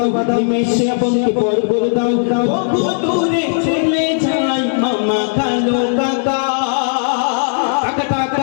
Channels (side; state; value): right; silent; digital silence